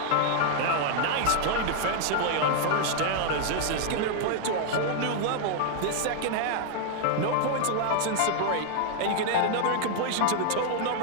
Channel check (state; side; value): different; both; correlation 0.00